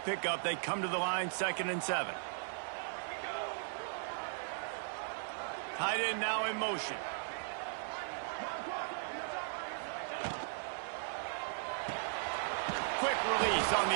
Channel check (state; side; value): silent; left; digital silence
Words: pickup, they come to the line, 2nd and 7. Tight end now in motion. Quick release on